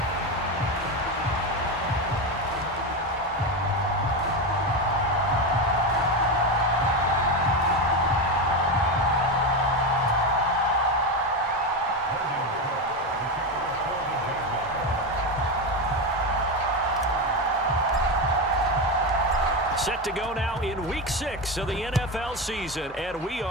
Set to go now in Week 6 of the NFL season, and we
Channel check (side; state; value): both; normal; correlation 0.15